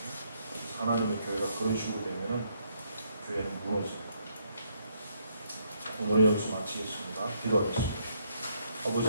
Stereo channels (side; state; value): both; inverted; correlation -0.72